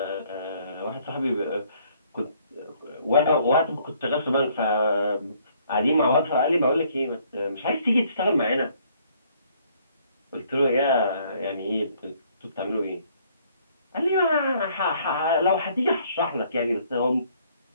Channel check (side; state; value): both; inverted; correlation -0.64